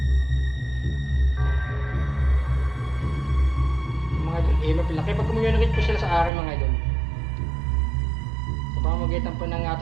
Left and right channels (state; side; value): drops out; left; at 6.3 s